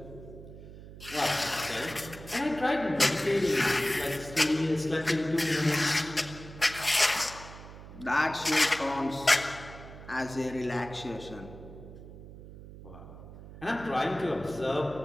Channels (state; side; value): noise; right; hum, 15 dB below the sound